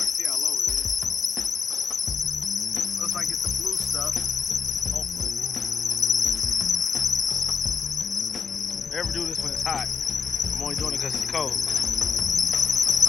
can see how low it is. Looks like it's the blue stuff. Hopefully. Never do this when it's hot. I'm only doing it because it's cold.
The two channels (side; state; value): right; quieter; 6.1 dB